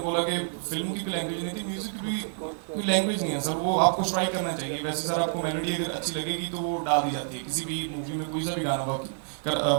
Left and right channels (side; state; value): left; silent; 56 dB below the other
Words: बोला कि फिल्म की भी लैंग्वेज नहीं थी, म्यूजिक की भी कोई लैंग्वेज नहीं है सर, वो आपको स्ट्राइक करना चाहिए। वैसे सर आपको मेलोडी अगर अच्छी लगेगी तो वो डाल दी जाती है किसी भी मूवी में, कोई सा भी गाना